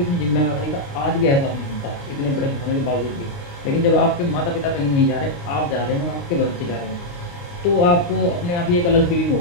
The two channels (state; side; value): late; right; 29 ms